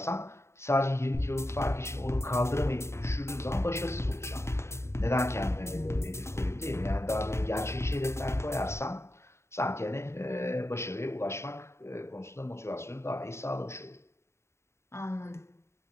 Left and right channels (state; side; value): late; right; 0.13 ms